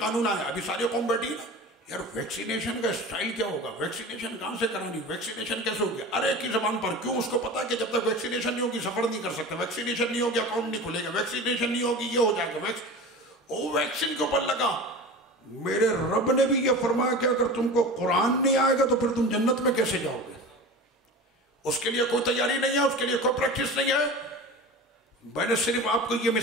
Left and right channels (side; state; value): both; normal; correlation 0.33